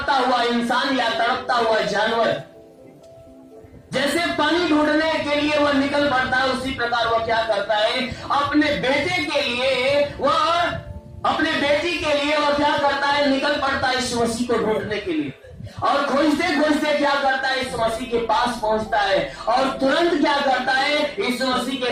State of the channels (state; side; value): identical; both; correlation 1.00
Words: हुआ इंसान या तड़पता हुआ जानवर जैसे पानी ढूंढने के लिए वह निकल पड़ता है, उसी प्रकार वह क्या करता है? अपने बेटे के लिए वह क्या करता है? निकल पड़ता है यीशु मसीह को ढूंढने के लिए। और खोजते खोजते क्या करता है? यीशु मसीह के पास पहुंचता है और तुरंत क्या करता है? यीशु मसीह के